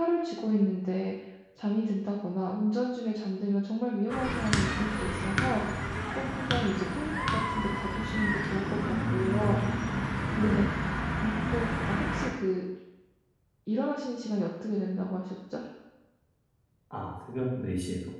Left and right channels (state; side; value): identical; both; correlation 1.00